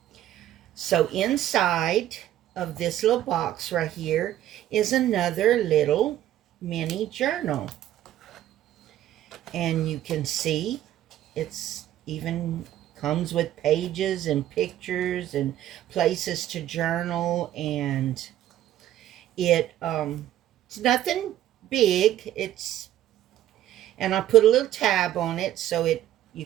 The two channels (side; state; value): left; quieter; 12.6 dB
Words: So inside of this little box right here is another little mini journal. And you can see it's even comes with pages and pictures and places to journal, and it's nothing big. And I put a little tab on it so you